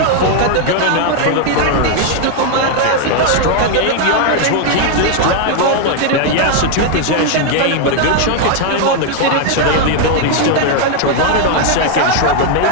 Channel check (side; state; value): both; different; correlation 0.00